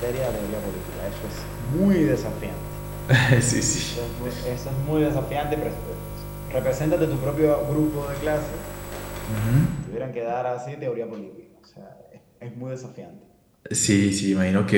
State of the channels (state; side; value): identical; both; correlation 1.00